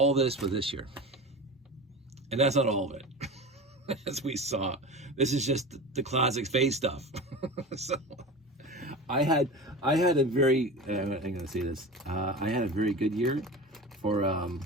this was this year. And that's not all of it. As we saw, this is just the classic space stuff. So I had a very, I'm going to say this, I had a very good year for, I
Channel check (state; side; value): normal; both; correlation 0.31